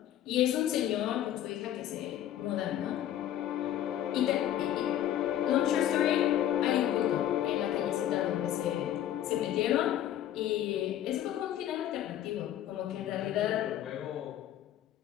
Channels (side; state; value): right; quieter; 11.7 dB